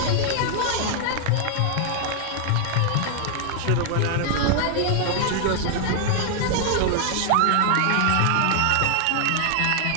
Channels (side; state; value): both; different; correlation 0.00